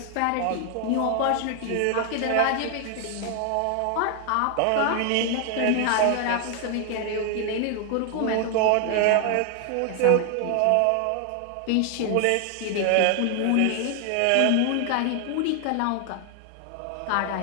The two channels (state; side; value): different; both; correlation 0.00